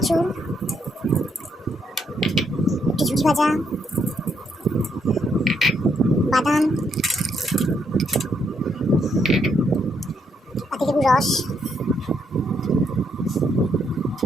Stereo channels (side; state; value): both; normal; correlation 0.75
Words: একটু ঝুড়ি ভাজা, বাদাম, পাতিলেবুর রস,